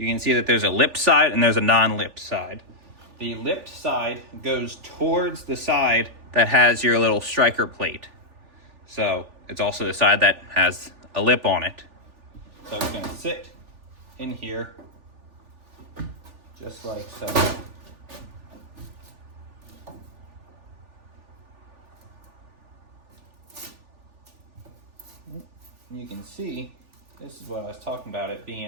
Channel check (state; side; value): late; left; 3.4 ms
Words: can see that there's a lipped side and there's a non-lipped side. The lipped side goes towards the side that has your little striker plate. So it's also the side that has a lip on it. So it's going to sit in here just like so. And you can see, this is what I was talking about, it